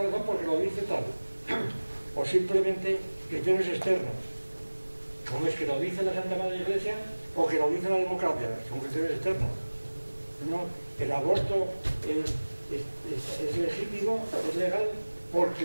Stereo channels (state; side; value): inverted; both; correlation -1.00